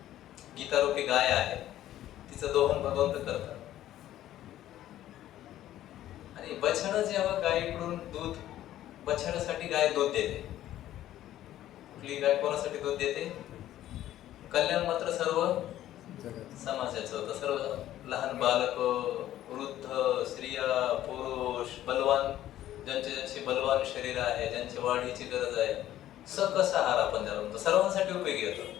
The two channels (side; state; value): right; quieter; 13.0 dB